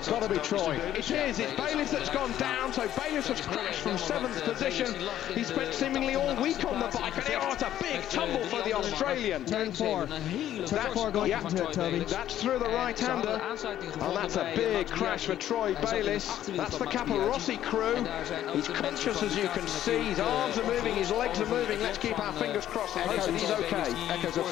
got to be Troy. It is. It's Bayliss that's gone down. So Bayliss has crashed from 7th position. He spent seemingly all week on the bike, and it's a big tumble for the Australian. Turn 4. Turn 4 going into it, Toby. That's through the right-hander, and that's a big crash for Troy Bayliss. That's the Rossi crew. He's conscious, as you can see. His arms are moving, his legs are moving. Let's keep our fingers crossed and hope that he's okay. Echoes of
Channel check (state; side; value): quieter; right; 11.9 dB